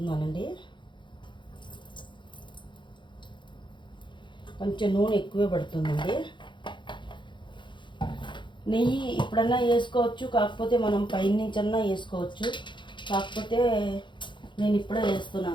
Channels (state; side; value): late; right; 0.23 ms